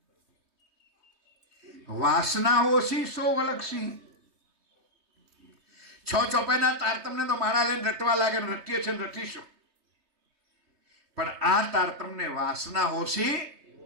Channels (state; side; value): late; left; 3.2 ms